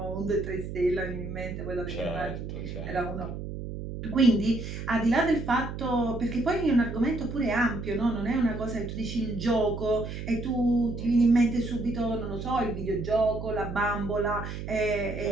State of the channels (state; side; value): noise; right; hum, 7 dB below the sound